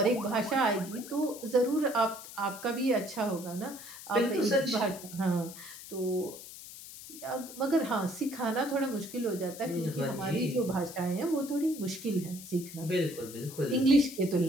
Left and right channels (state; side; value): noise; left; hiss, 14 dB below the sound